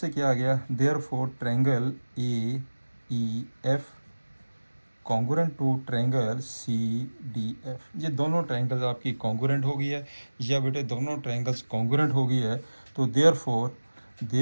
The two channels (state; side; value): inverted; both; correlation -1.00